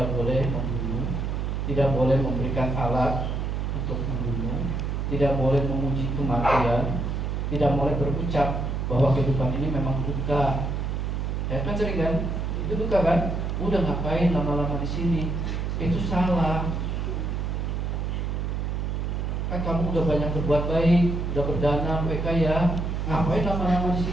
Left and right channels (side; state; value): right; noise; hum, 1 dB below the sound